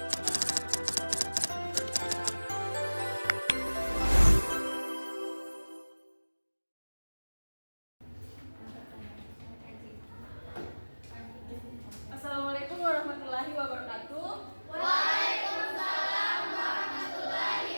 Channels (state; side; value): inverted; both; correlation -1.00